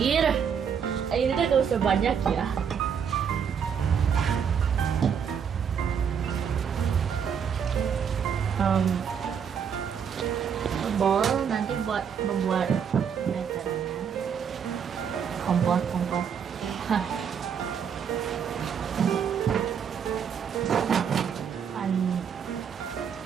gak usah banyak ya. Bol nanti buat membuat batternya, kompor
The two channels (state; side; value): quieter; left; 7.4 dB